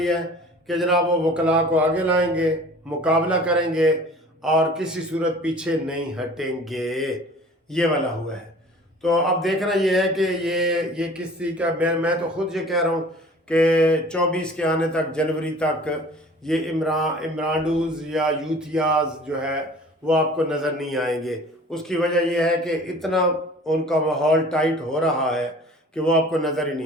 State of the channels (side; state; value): both; normal; correlation 0.46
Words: है कि जनाब वो वकला को आगे लाएंगे, मुकाबला करेंगे और किसी सूरत पीछे नहीं हटेंगे। ये वाला हुआ है। तो अब देखना ये है कि ये किसी का, मैं तो खुद ये कह रहा हूँ कि 24 के आने तक, जनवरी तक ये इमरानडूज या यूथियाज जो है वो आपको नज़र नहीं आएंगे। उसकी वजह यह है कि इतना उनका माहौल टाइट हो रहा है कि वो आपको नज़र ही